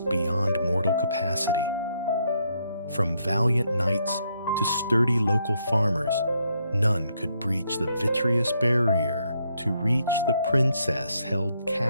beyond mortal capacity. From valiant knights to sturdy local farmers, none could breach the vitreous barrier to reach the princess held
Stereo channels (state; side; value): inverted; both; correlation -0.75